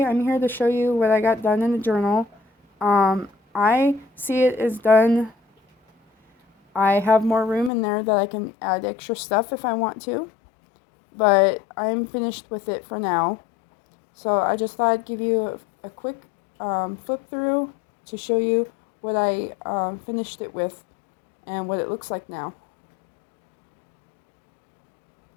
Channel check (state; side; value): drops out; right; at 7.7 s